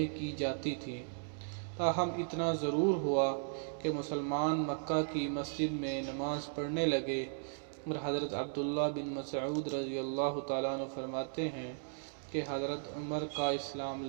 کی جاتی تھیں۔ تاہم اتنا ضرور ہوا کہ مسلمان مکہ کی مسجد میں نماز پڑھنے لگے، اور حضرت عبداللہ بن مسعود رضی اللہ تعالیٰ عنہ فرماتے ہیں کہ حضرت عمر کا اسلام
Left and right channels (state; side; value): silent; left; digital silence